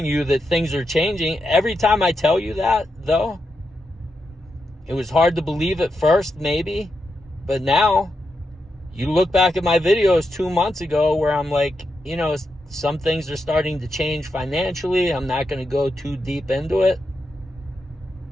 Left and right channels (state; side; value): normal; both; correlation 0.85